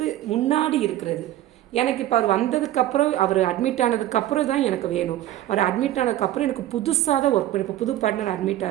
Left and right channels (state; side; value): quieter; left; 13.8 dB